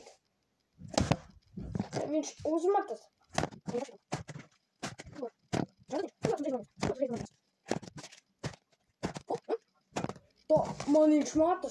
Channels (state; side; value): identical; both; correlation 1.00